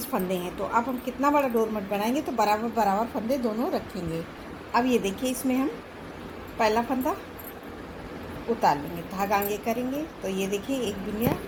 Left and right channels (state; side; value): identical; both; correlation 1.00